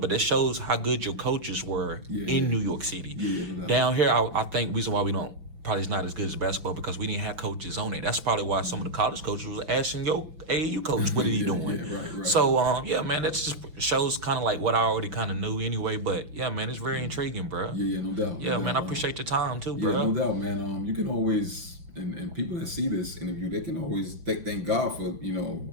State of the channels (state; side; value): late; left; 5.9 ms